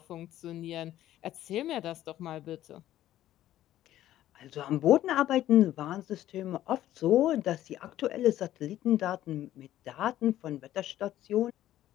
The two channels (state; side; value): quieter; right; 13.3 dB